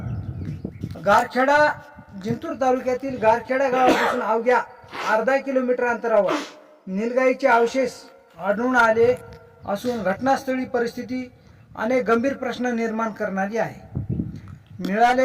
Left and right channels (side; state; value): both; identical; correlation 1.00